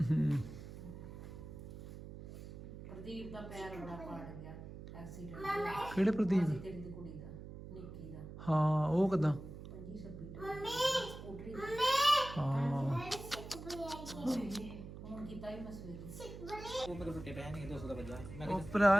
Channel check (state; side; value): noise; right; hum, 12 dB below the sound